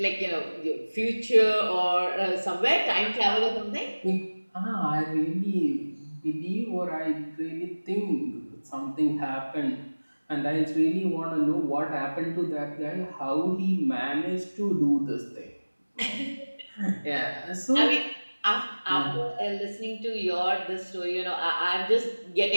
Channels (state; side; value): inverted; both; correlation -1.00